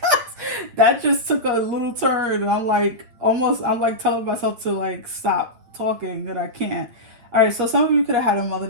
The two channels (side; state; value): left; late; 9.1 ms